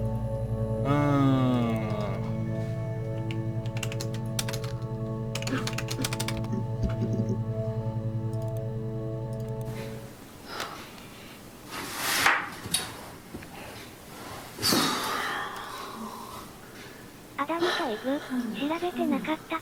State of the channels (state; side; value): identical; both; correlation 1.00